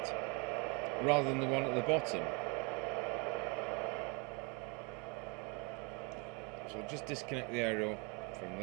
rather than the one at the bottom. So just disconnect the aerial from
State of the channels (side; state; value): left; quieter; 32.3 dB